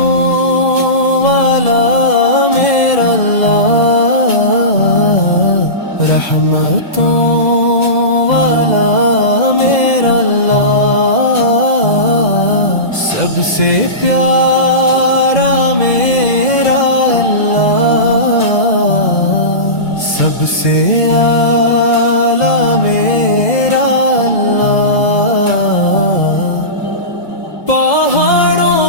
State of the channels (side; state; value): right; late; 2.0 ms